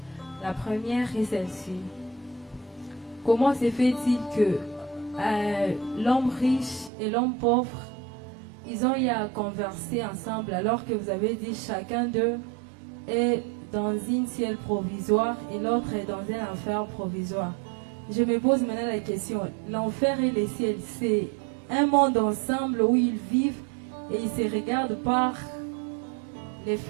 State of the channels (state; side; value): drops out; left; at 6.9 s